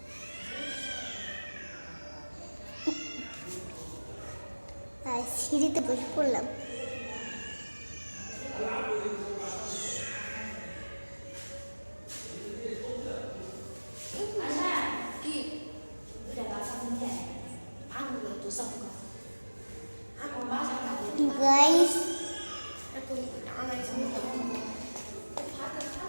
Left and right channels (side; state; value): both; inverted; correlation -1.00